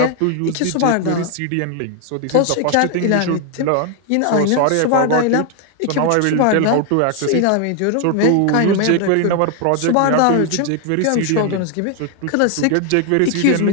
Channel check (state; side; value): different; both; correlation 0.00